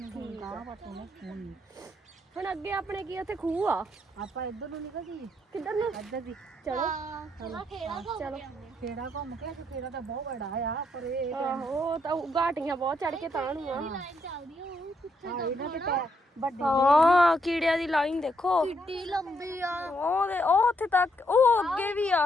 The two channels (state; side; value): normal; both; correlation 0.76